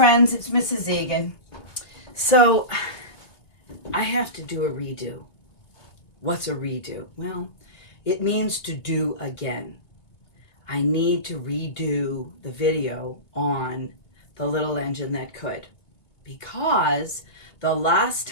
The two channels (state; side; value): late; right; 3.1 ms